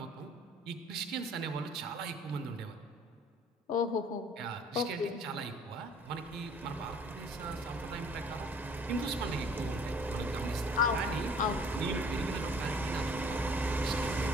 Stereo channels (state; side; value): normal; both; correlation 0.54